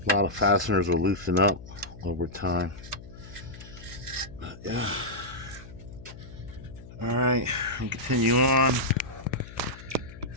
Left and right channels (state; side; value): noise; left; hum, 16 dB below the sound